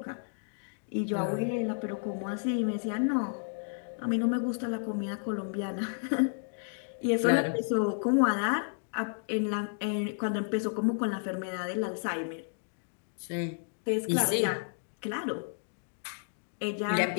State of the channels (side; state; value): right; silent; digital silence